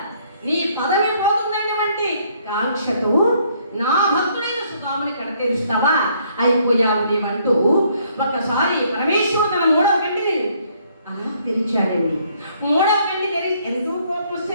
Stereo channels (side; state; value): both; inverted; correlation -0.66